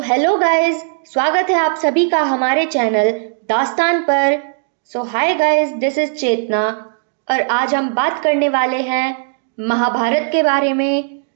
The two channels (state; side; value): silent; left; digital silence